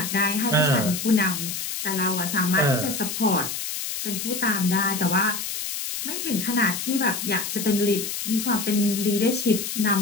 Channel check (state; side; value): noise; left; hiss, 5 dB below the sound